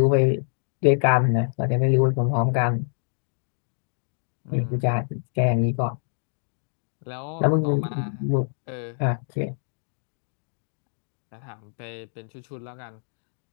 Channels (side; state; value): right; silent; digital silence